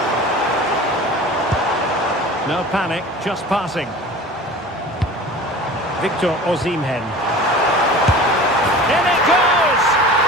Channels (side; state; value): both; normal; correlation 0.39